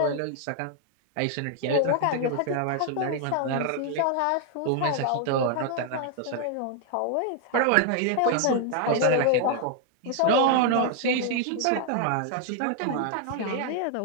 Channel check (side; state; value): both; different; correlation 0.00